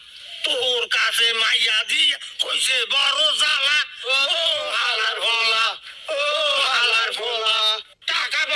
তোর কাছে মাইয়া দি কইছে বড় জ্বালা ও হালার ভোলা ও হালার ভোলা টাকা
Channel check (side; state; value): both; identical; correlation 1.00